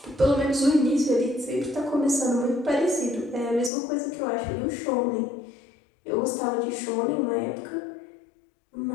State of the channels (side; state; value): right; drops out; at 3.7 s